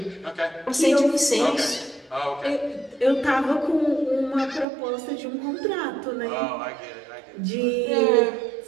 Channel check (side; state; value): left; drops out; at 4.7 s